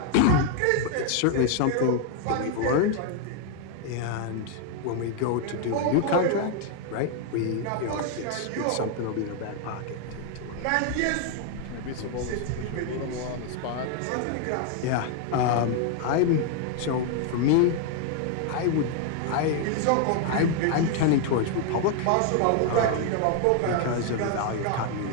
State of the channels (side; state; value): both; different; correlation 0.00